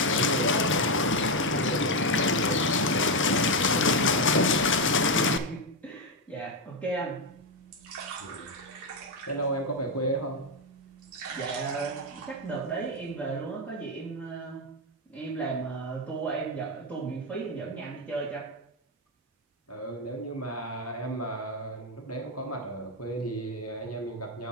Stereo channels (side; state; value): both; normal; correlation 0.06